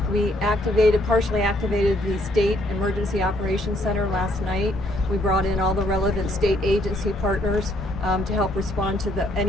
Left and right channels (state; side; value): normal; both; correlation 0.68